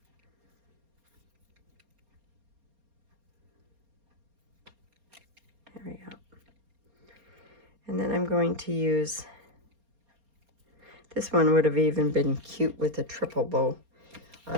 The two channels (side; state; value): left; late; 4.3 ms